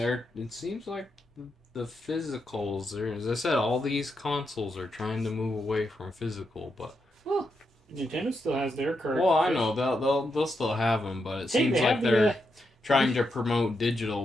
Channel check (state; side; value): normal; both; correlation 0.84